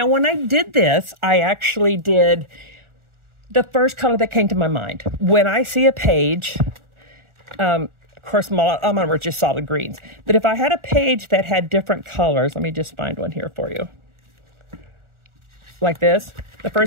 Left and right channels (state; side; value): late; left; 1.4 ms